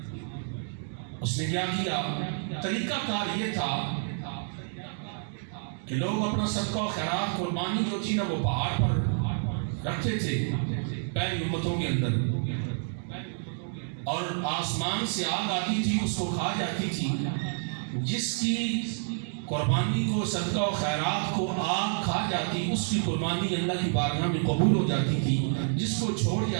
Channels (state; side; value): silent; left; digital silence